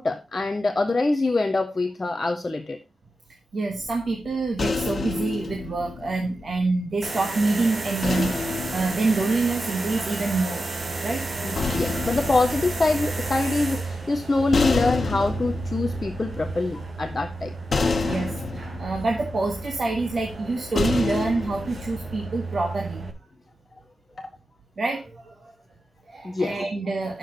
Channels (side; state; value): both; normal; correlation 0.90